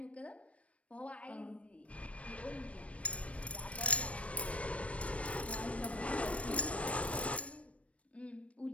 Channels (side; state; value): right; late; 0.063 ms